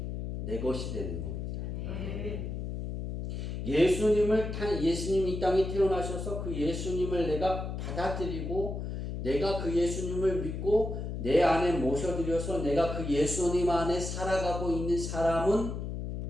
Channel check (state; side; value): noise; left; hum, 5 dB below the sound